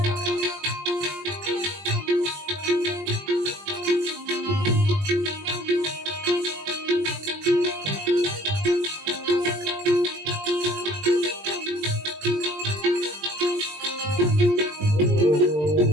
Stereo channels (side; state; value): left; late; 20 ms